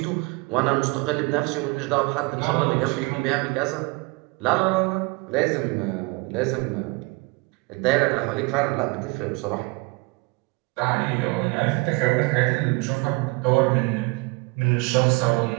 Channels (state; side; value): quieter; left; 27.2 dB